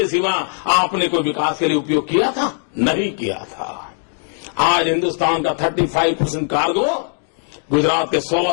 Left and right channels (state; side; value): silent; right; 58 dB below the other